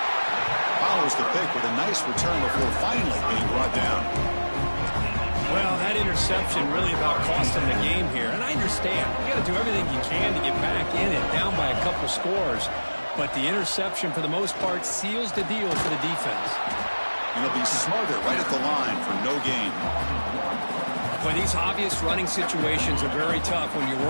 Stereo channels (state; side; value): inverted; both; correlation -1.00